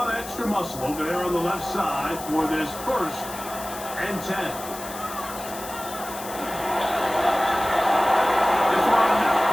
of extra muscle over there on the left side for this 1st and 10. This one not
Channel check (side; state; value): left; noise; hiss, 12 dB below the sound